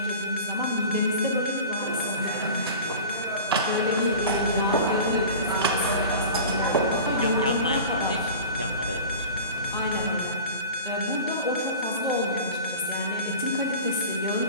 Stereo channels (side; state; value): both; inverted; correlation -0.36